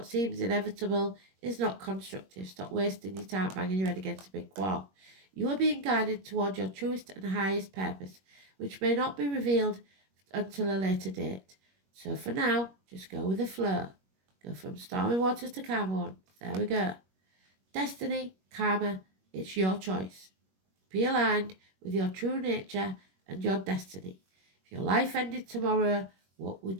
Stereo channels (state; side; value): late; left; 21 ms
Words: seems inevitable is not constructive. Stop wasting your time banging your head against a big wall. You are being guided toward your truest and highest purpose, which may not be revealed until a later date. So for now, just go with the flow. Go from stormy waters to calm ones. There we go. Destiny, karma, it's your choice. Be aligned with your true nature and your destiny. If your life ended tomorrow, what